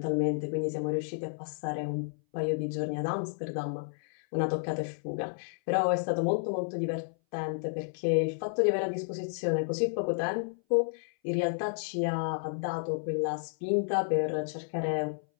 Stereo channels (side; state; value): right; silent; 57 dB below the other